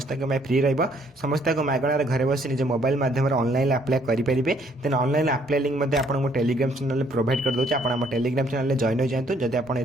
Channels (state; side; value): normal; both; correlation 0.65